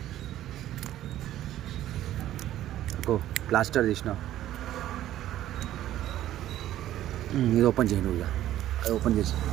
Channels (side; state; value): left; quieter; 13.1 dB